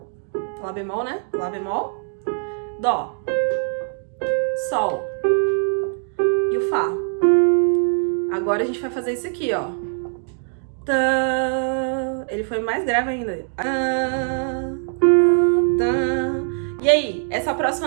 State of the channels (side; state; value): left; silent; digital silence